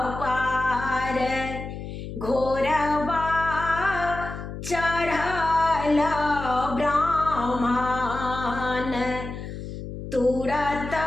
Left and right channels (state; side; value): noise; left; hum, 9 dB below the sound